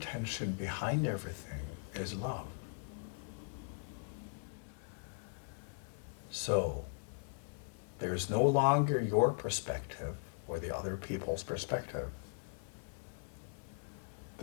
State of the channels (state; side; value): silent; right; 52 dB below the other